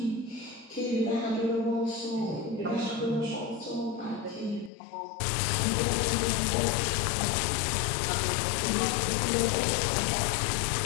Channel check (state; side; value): drops out; right; at 4.7 s